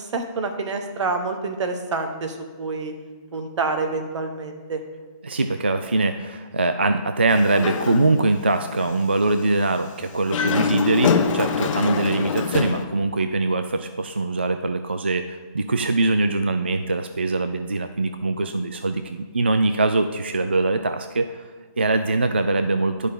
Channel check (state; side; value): inverted; both; correlation -0.70